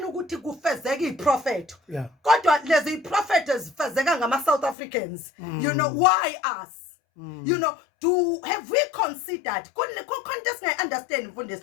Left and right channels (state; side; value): drops out; right; at 4.8 s